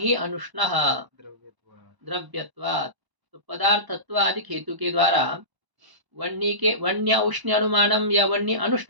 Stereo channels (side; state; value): left; late; 1.0 ms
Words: अनुष्णः द्रव्यत्वात्, तो पदार्थत्व आदि हेतु के द्वारा वन्य के वन्य उष्ण अनुमानम या वन्य